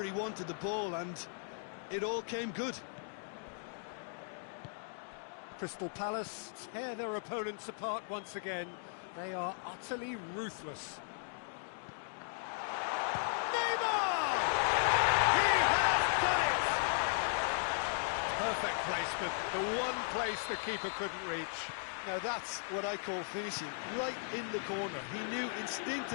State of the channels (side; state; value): right; silent; digital silence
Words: he wanted the ball, and it all came good. Crystal Palace tear their opponents apart once again. They are utterly ruthless. Perfect placement, the one place the keeper couldn't reach. Now that's what I call finishing, right in the corner. He knew